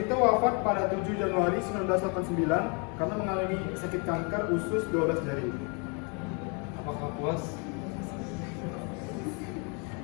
wafat pada 7 Januari 1989 karena mengalami sakit kanker usus 12 jari. Apakah puas?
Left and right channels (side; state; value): right; quieter; 34.7 dB